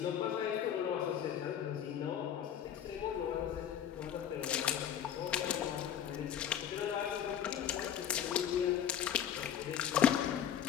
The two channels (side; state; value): right; quieter; 9.5 dB